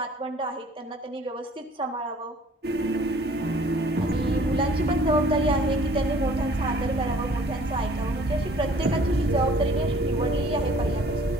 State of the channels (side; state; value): both; normal; correlation 0.54